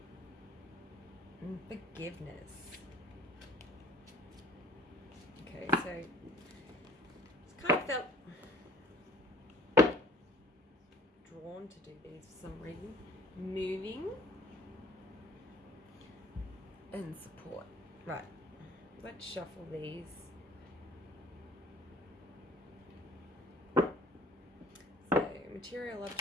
And forgiveness. Okay, so it's kind of felt drawn to do these for some reason. Moving and support. Right, let's shuffle these. So, material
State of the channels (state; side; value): normal; both; correlation 0.52